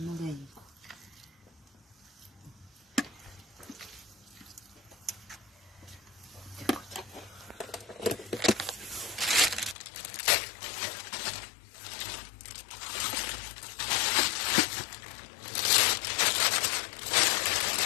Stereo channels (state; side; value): drops out; right; at 9.8 s